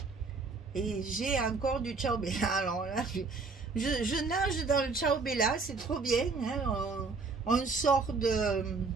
Et j'ai encore du Ciao Bella. Alors là, je nage dans le Ciao Bella, c'est trop bien. Hein, on sort de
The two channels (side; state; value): left; quieter; 4.3 dB